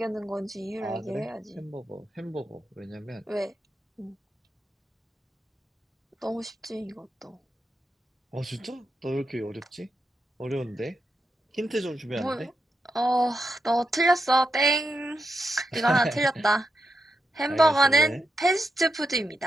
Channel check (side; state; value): both; normal; correlation 0.85